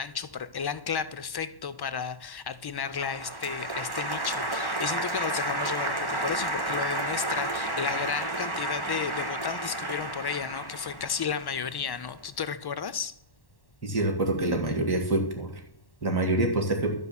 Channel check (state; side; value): late; right; 1.1 ms